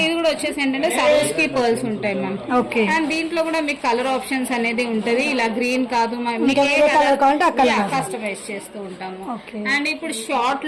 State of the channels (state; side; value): identical; both; correlation 1.00